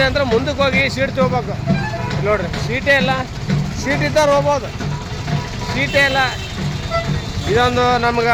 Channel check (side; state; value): both; identical; correlation 1.00